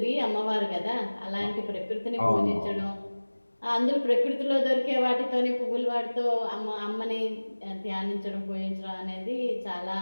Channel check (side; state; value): both; inverted; correlation -1.00